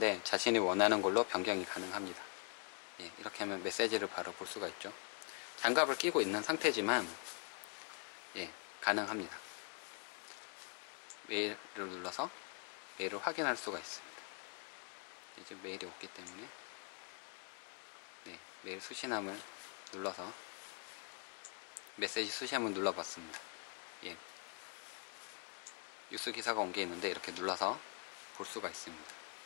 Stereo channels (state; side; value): quieter; right; 37.5 dB